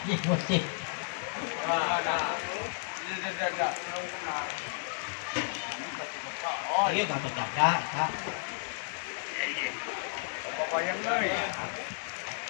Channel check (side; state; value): right; silent; 56 dB below the other